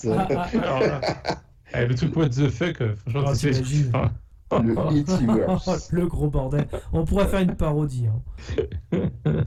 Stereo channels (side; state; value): both; identical; correlation 1.00